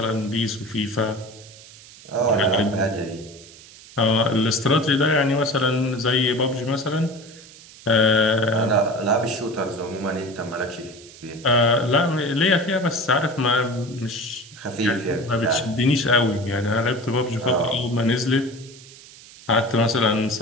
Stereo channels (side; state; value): right; noise; hiss, 20 dB below the sound